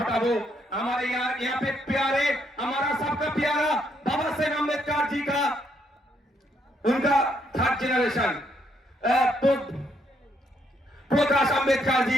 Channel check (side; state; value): both; normal; correlation 0.73